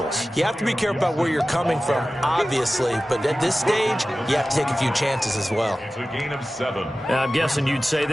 You have to be careful about where you're coming from, obviously. But at this stage, you have to take a few chances as well. It's a gain of 7. I'm guessing you'd say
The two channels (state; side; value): normal; both; correlation 0.96